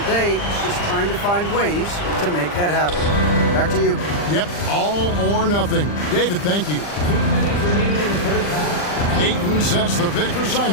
day, it's just trying to find ways to make that happen. Back to you. Yep, all or nothing. David, thank you. 2 minutes remaining in the first half. Ayton sets the pick for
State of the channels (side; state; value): right; late; 40 ms